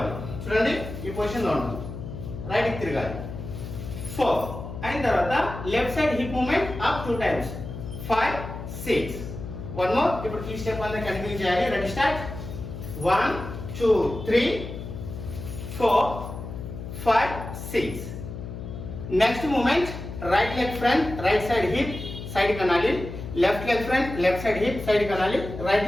చూడండి ఈ పొజిషన్ లో ఉన్నాం. రైట్ కి తిరగాలి. 4 అయిన తర్వాత left side hip movement up 2 times. 5 6 one more. ఇప్పుడు ఈ స్టెప్ అంతా కంటిన్యూ చేయాలి. Ready start. 1 2 3 4 5 6. Next moment, right leg front, right side hip side కి అనాలి. Left leg front, left side hip side కి అనాలి. రైట్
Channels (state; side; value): noise; left; hum, 9 dB below the sound